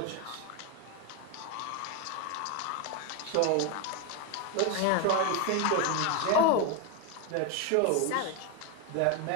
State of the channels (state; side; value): different; both; correlation 0.02